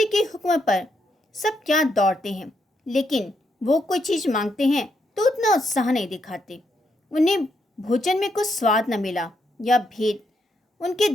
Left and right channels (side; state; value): both; normal; correlation 0.79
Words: के हुक्म पर सब क्या दौड़ते हैं, लेकिन वो कोई चीज़ मांगते हैं तो उतना उत्साह नहीं दिखाते। उन्हें भोजन में कुछ स्वाद न मिला या भेद उनके